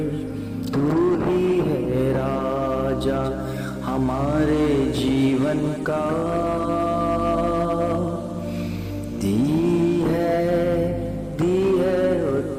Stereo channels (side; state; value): both; identical; correlation 1.00